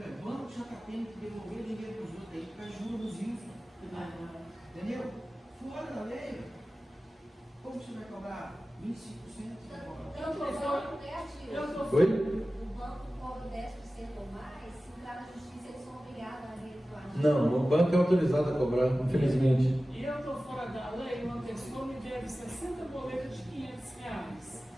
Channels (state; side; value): normal; both; correlation 0.96